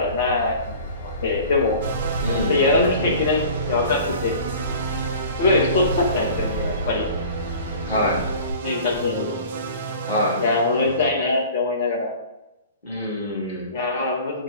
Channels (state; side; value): inverted; both; correlation -0.43